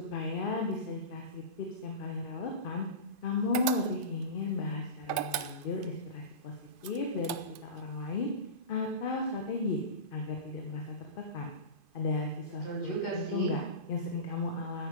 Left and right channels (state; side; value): late; right; 2.5 ms